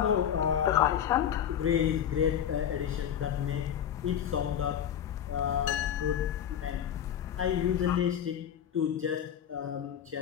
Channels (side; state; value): right; quieter; 9.4 dB